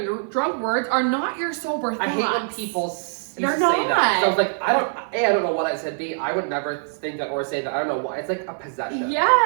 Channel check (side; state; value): left; silent; 55 dB below the other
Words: drunk words are not your sober thoughts. I hate when people used They're to say that. not. So I was like, I don't know what I said. B, I would never think that or say that. I don't know why. It's like a possession.